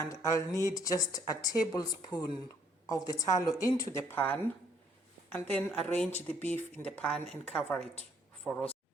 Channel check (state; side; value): normal; both; correlation 0.65